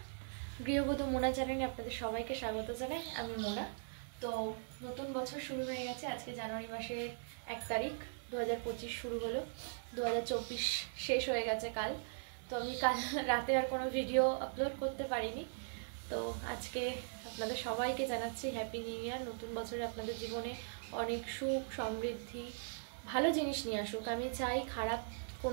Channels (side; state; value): left; silent; digital silence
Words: গৃহবধূ মোনা চ্যানেলে আপনাদের সবাইকে স্বাগত জানাই। আমি মোনা। তো নতুন বছর শুরু হয়ে গেছে। আজকে জানুয়ারি মাসের 1 তারিখ, 2025 শুরু হলো। 2024 শেষ হয়ে গেছে কাল। তো আমি কাল রাতে আর কোনো ভিডিও আপলোড করতে পারিনি। তো আজকে আপনাদের সবাইকে জানাচ্ছি হ্যাপি নিউ ইয়ার। নতুন বছরে আপনাদের জীবনে অনেক সুখ সমৃদ্ধি ভালো জিনিস নিয়ে আসুক। আমি চাই খারাপ